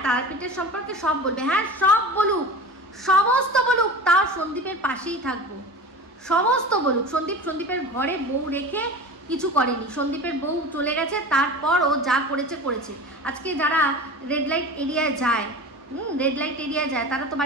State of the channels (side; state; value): both; normal; correlation 0.34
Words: তারাপীঠের সম্পর্কে সব বলবে, হ্যাঁ সব বলুক, সমস্ত বলুক, তাও সন্দীপের পাশেই থাকবো, সমস্ত বলুক। সন্দীপের ঘরে বউ রেখে কিছু করেনি, সন্দীপের বউ চলে গেছে, তারপর ও যা করেছে। আজকে যারা রেড লাইট এরিয়ায় যায়, তারা তো